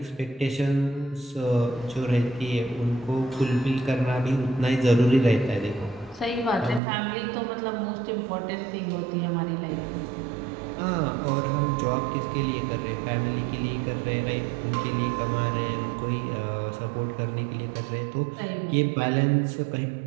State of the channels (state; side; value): drops out; left; at 6.8 s